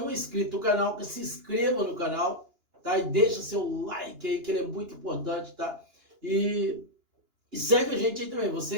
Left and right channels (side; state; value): left; late; 2.9 ms